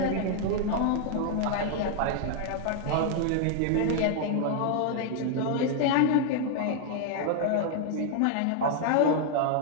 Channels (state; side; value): different; both; correlation 0.00